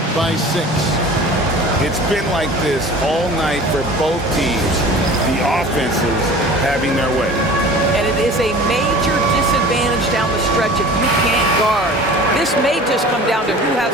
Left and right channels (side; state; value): both; normal; correlation 0.42